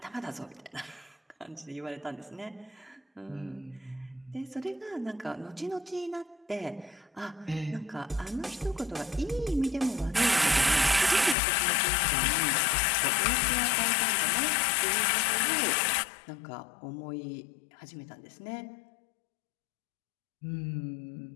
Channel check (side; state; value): right; drops out; at 11.4 s